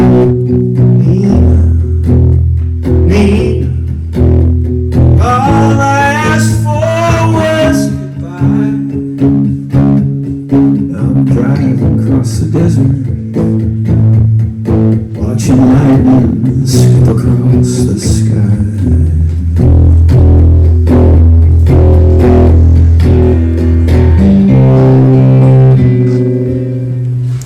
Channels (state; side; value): identical; both; correlation 1.00